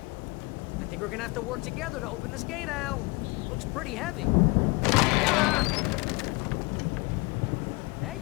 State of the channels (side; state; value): right; quieter; 26.6 dB